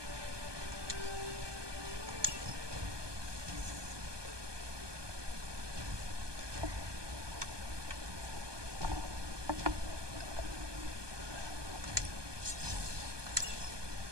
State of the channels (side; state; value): left; late; 1.2 ms